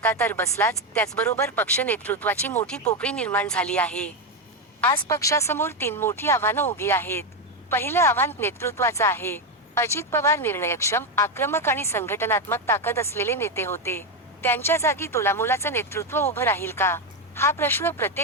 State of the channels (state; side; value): normal; both; correlation 0.08